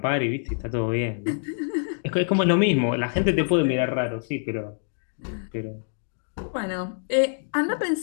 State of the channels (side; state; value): right; silent; 61 dB below the other